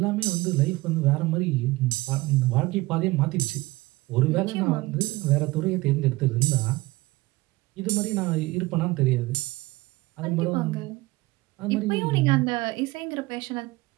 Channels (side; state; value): left; quieter; 20.7 dB